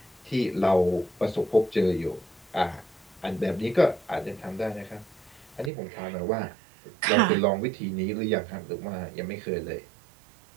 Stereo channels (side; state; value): left; drops out; at 5.7 s